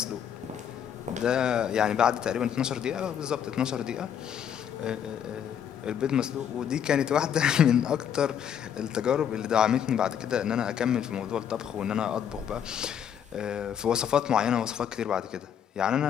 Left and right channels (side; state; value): right; quieter; 8.8 dB